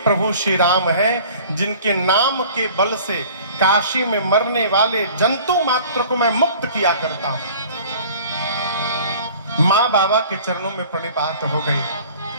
श्री राम हैं जिनके नाम के बल से काशी में मरने वाले जंतु मात्र को मैं मुक्त किया करता हूं। मां बाबा के चरणों में प्रणिपात हो गई।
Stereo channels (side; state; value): both; inverted; correlation -0.47